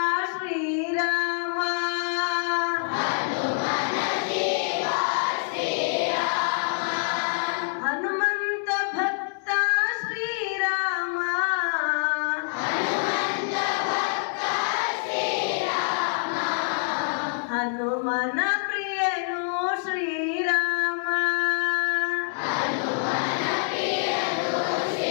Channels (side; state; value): right; silent; 61 dB below the other